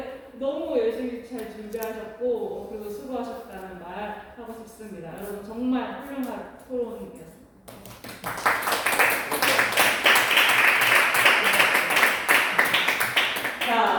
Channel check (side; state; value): both; identical; correlation 1.00